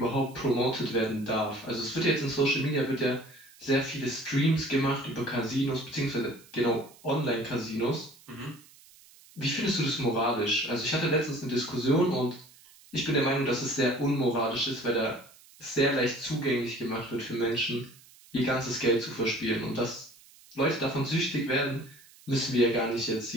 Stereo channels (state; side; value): noise; right; hiss, 25 dB below the sound